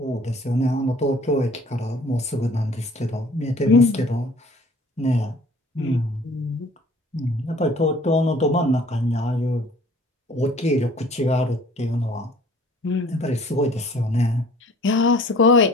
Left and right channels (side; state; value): both; normal; correlation 0.51